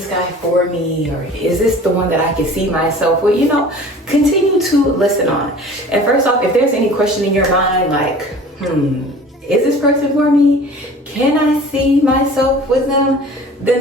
guy for me, or is this the one that I can see myself with, you know, continue to listen on. And first off, if there's any question in your mind, like, is this person for me? Can I see myself with them? Then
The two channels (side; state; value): both; normal; correlation 0.44